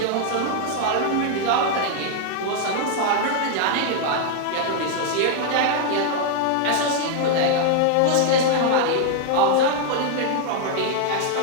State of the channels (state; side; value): different; both; correlation 0.00